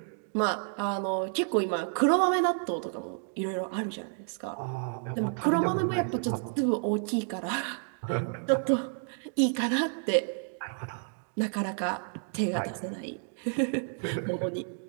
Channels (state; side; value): silent; left; 56 dB below the other